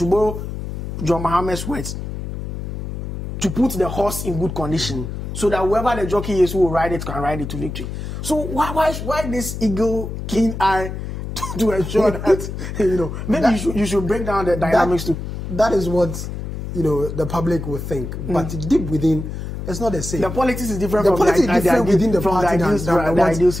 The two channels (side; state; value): left; noise; hum, 7 dB below the sound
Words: borrow John Mohammed's words, to put the horse in good condition, so that whoever the jockey is who will ride it can ride it to victory. So why this eagle keen eye to ensure that maybe you should break down the dynamics too. That is what the public will think, but deep within, it's not the same. The politics is different. The politics is different within the party than ideal